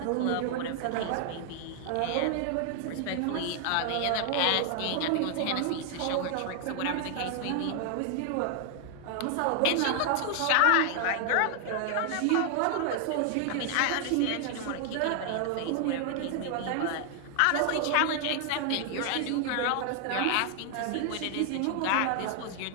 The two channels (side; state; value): both; different; correlation 0.00